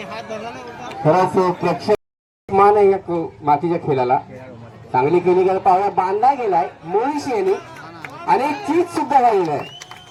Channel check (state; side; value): identical; both; correlation 1.00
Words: खरंच प्रेक्षक मान आहे या मातीच्या खेळाला. चांगली केली गेली पावला बांधला गेलाय मोळीशी यांनी आणि चीज सुद्धा झालेलं आहे.